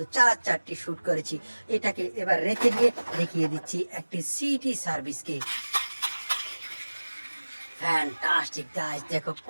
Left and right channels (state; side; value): inverted; both; correlation -1.00